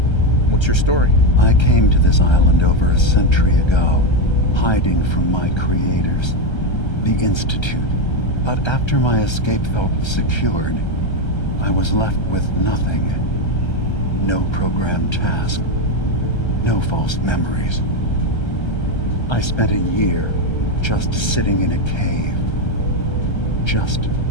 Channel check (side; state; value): right; late; 1.3 ms